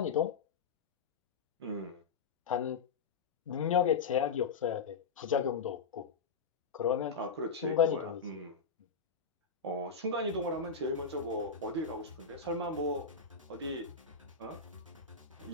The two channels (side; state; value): right; quieter; 5.3 dB